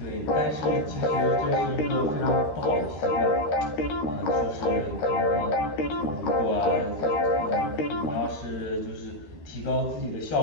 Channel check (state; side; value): late; right; 13 ms